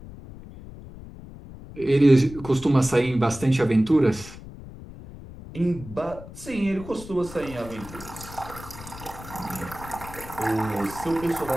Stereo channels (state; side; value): noise; left; rumble, 15 dB below the sound